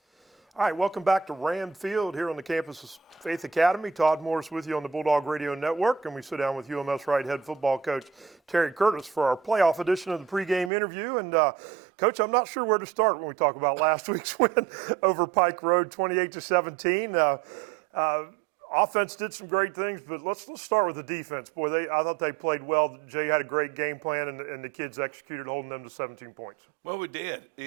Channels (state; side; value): drops out; left; at 10.7 s